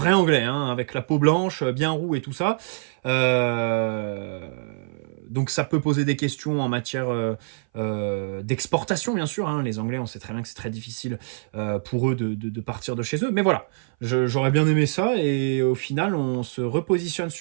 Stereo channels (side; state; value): left; silent; 59 dB below the other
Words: anglais, avec la peau blanche, bien roux et tout ça. Donc ça peut poser des questions en matière d'exportation, bien sûr. Les Anglais, on sait très bien que c'est très difficile pour eux de partir de chez eux. Mais voilà, j'aurais bien aimé ça. Et au final, on se repositionne